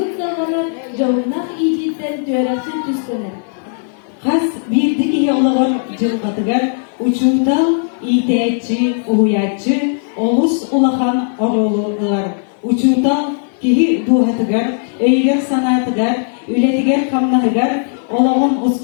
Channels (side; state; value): right; silent; 61 dB below the other